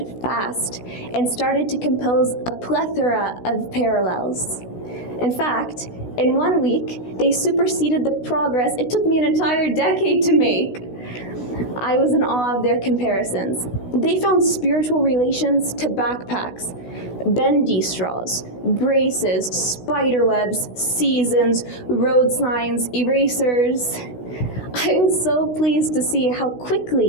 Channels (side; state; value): right; late; 16 ms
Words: fast and started to compose a plethora of parallels. In fact, in 1 week, they superseded the progress it took me an entire decade to make. I was in awe of their comparisons. They found spiritual relations to backpacks, bendy straws, braces, spider webs, seasons, road signs, erasers. I was so pleased to see how